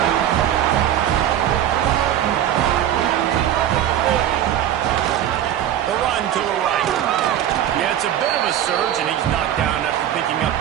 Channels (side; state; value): left; quieter; 11.1 dB